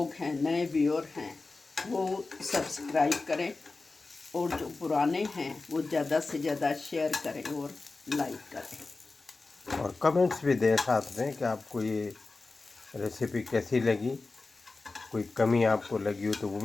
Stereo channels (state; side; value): quieter; right; 3.7 dB